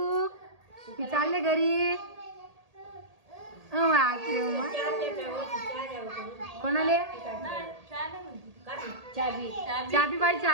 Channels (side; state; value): left; late; 1.8 ms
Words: मी चालले घरी. कोणाले? चाबी. चाबी बाई